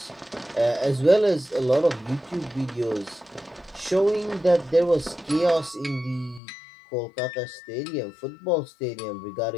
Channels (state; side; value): drops out; right; at 6.4 s